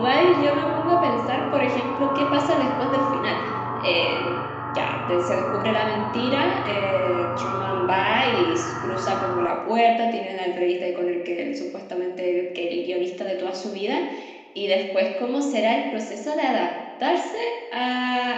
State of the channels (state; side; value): identical; both; correlation 1.00